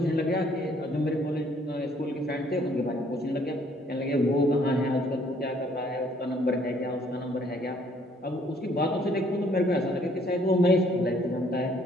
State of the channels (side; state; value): both; normal; correlation 0.63